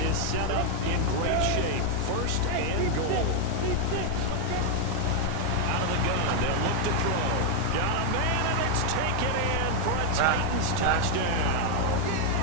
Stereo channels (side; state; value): both; different; correlation 0.00